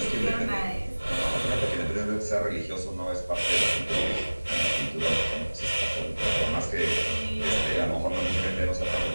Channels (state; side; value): inverted; both; correlation -1.00